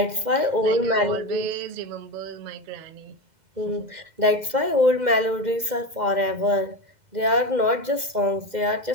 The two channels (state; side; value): late; left; 2.0 ms